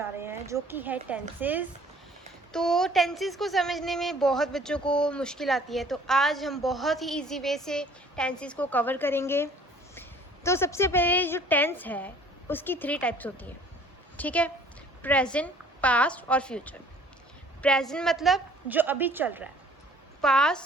रहे हैं, जो कि है टेंसेस। तो टेंसेस को समझने में बहुत बच्चों को मुश्किल आती है, तो आज हम बहुत ही इजी वे से टेंसेस को कवर करेंगे। तो सबसे पहले जो टेंस है उसकी 3 टाइप्स होती हैं, ठीक है। प्रेजेंट, पास्ट और फ्यूचर। प्रेजेंट मतलब जो अभी चल रहा है,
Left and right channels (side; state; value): both; normal; correlation 0.54